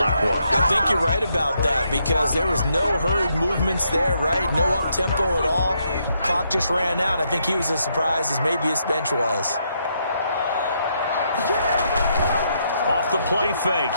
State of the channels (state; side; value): inverted; both; correlation -0.76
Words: was. I think you're right about that because there was no hurried movements there, right? No up-tempo at all. Clock just ran out. I think he was as surprised as maybe his bench was. Off the play fake,